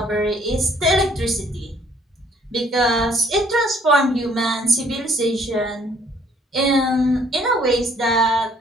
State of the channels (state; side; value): normal; both; correlation 0.62